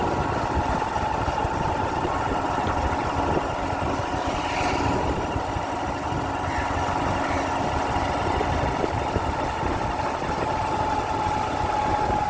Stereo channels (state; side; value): identical; both; correlation 1.00